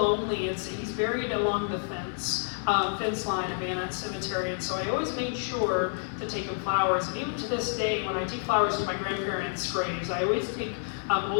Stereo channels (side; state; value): right; silent; 59 dB below the other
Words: He's buried along the fence line of Anutt Cemetery, and so I always made sure to take him flowers. And even to this day, when I take flowers to my grandparents' graves, I always take